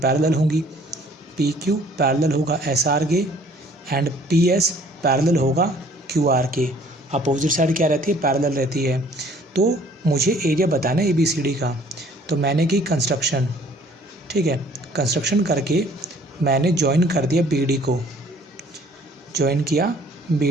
होंगी। पी क्यू पैरेलल होगा एस आर के एंड पी एस पैरेलल होगा क्यू आर के। अपोजिट साइड क्या रहती है, पैरेलल रहती है। तो मुझे एरिया बताना है ए बी सी डी का। तो मैंने की कंस्ट्रक्शन, ठीक है। कंस्ट्रक्शन करके मैंने ज्वाइन कर दिया बी डी को, ज्वाइन किया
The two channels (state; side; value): normal; both; correlation 0.57